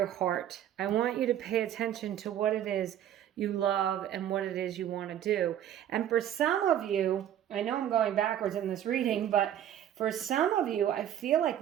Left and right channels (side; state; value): left; quieter; 10.8 dB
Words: heart. I want you to pay attention to what it is you love and what it is you want to do. And for some of you, I know I'm going backwards in this reading, but for some of you, I feel